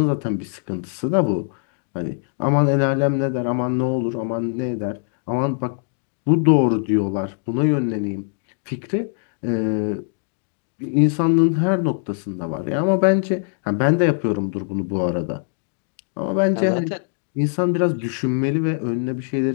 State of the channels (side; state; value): right; silent; digital silence